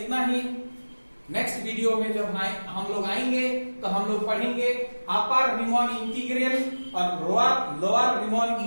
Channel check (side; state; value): both; inverted; correlation -1.00